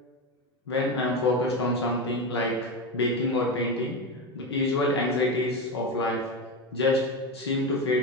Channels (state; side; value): normal; both; correlation 0.17